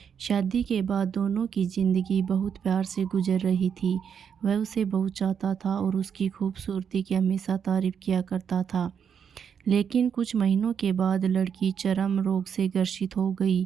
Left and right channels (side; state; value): left; quieter; 7.5 dB